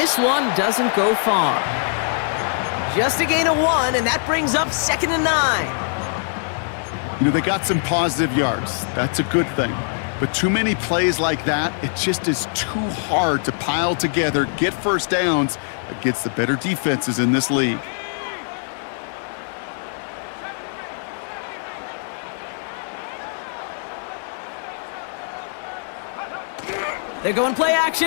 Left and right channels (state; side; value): silent; right; digital silence